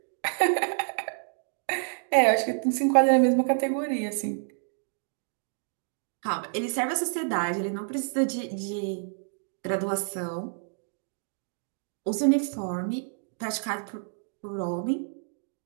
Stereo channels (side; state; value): left; silent; digital silence